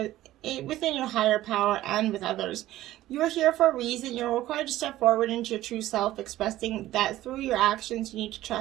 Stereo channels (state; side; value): quieter; left; 15.0 dB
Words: within your higher power and with others. You are here for a reason. You're required to step forward into your true self, expressing that through your actions you need to